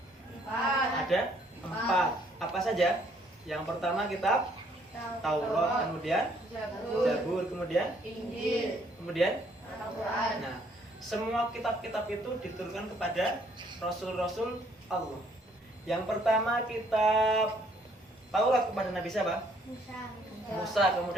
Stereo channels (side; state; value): both; normal; correlation 0.65